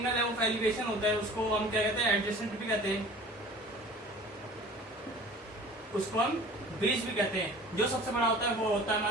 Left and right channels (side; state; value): both; normal; correlation 0.44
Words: है वो एलिवेशन होता है, उसको हम क्या कहते हैं, एडजेसेंट भी कहते हैं, उसको हम बेस भी कहते हैं। जो सबसे बड़ा होता है वो होता है